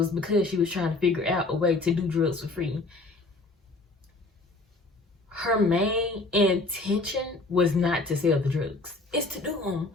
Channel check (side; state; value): right; quieter; 3.3 dB